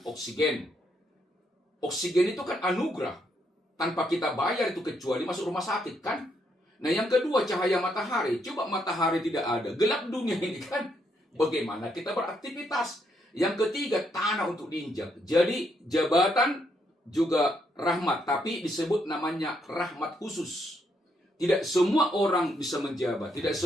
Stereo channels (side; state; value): both; normal; correlation 0.76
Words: oksigen. Oksigen itu kan anugerah. Tanpa kita bayar itu kecuali masuk rumah sakit kan? Nah, yang kedua, cahaya matahari. Coba matahari tidak ada, gelap dunia ini kan? Bagaimana kita beraktivitas? Yang ketiga, tanah untuk diinjak. Jadi jabatan juga rahmat, tapi disebut namanya rahmat khusus. Tidak semua orang bisa menjabat, tidak